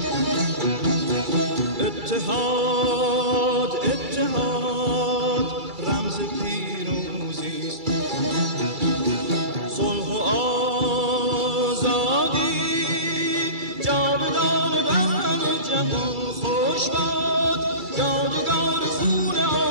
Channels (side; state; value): left; late; 2.3 ms